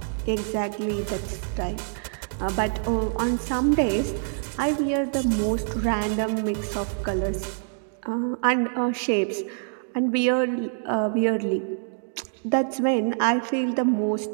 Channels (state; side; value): silent; left; digital silence